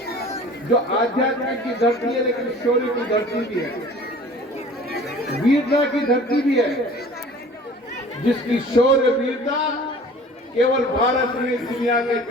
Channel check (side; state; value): both; normal; correlation 0.46